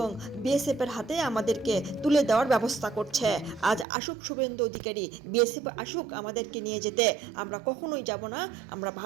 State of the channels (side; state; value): left; drops out; at 3.9 s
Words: বিএসএফের হাতে আমাদেরকে তুলে দেওয়ার ব্যবস্থা করছে। আজ আসুক শুভেন্দু অধিকারী, বিএসএফ আসুক আমাদেরকে নিয়ে যেতে, আমরা কখনোই যাব না। আমরা